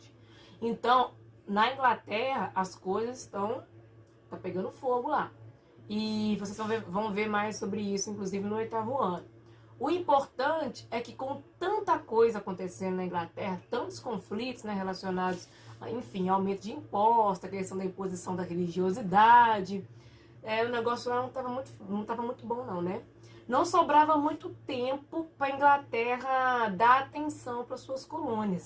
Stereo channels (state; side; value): identical; both; correlation 1.00